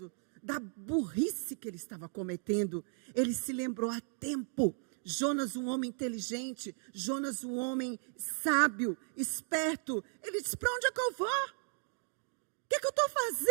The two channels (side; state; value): left; silent; 54 dB below the other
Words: da burrice que ele estava cometendo, ele se lembrou a tempo. Jonas, um homem inteligente, Jonas, um homem sábio, esperto, ele disse: para onde é que eu vou? O que é que eu estou